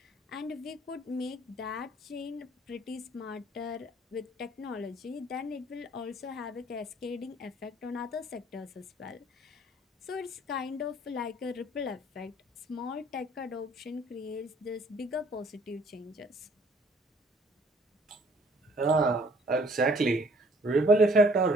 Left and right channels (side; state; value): both; normal; correlation 0.58